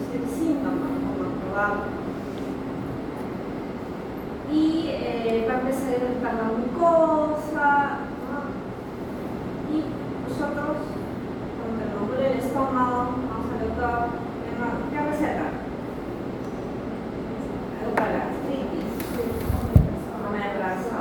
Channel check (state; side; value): identical; both; correlation 1.00